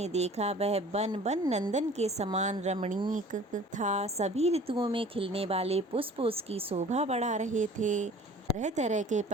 देखा, वह वन नंदन के समान रमणीक था। सभी ऋतुओं में खिलने वाले पुष्प उसकी शोभा बढ़ा रहे थे। तरह तरह के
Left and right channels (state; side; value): normal; both; correlation 0.47